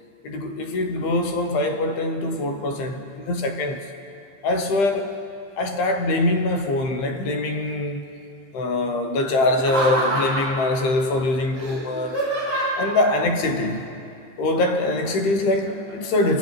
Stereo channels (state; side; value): late; right; 15 ms